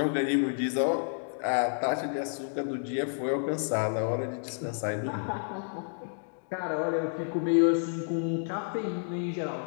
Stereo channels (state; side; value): silent; right; digital silence